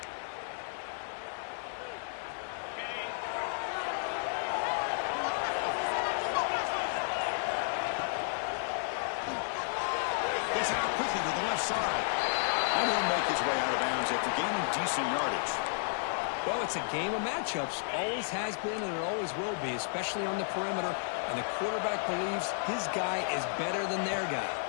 Gets it out quickly to the left side. And he'll make his way out of bounds after gaining decent yardage. Well, it's a game of matchups. Always has been and it always will be, especially on the perimeter. And the quarterback believes his guy is better than their guy.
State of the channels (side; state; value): right; silent; digital silence